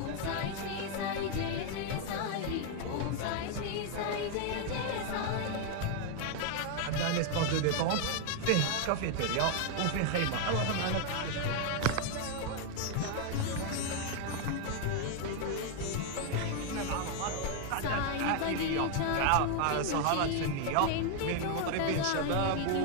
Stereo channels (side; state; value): both; different; correlation 0.00